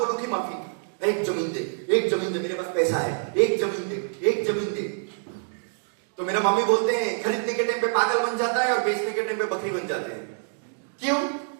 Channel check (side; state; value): left; silent; digital silence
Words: लो की माफी, एक जमीन दे मेरे पास पैसा है, एक जमीन दे। तो मेरा मम्मी बोलते हैं खरीदने के टाइम पे पागल बन जाता है और बेचने के टाइम पे बकरी बन जाते हैं। क्यों?